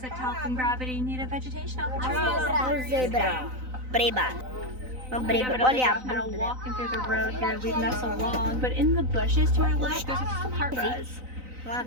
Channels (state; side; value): late; left; 3.9 ms